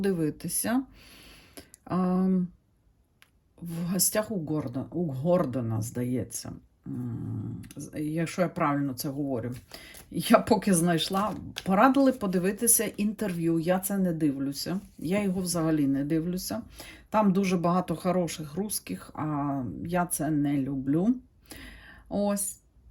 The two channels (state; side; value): identical; both; correlation 1.00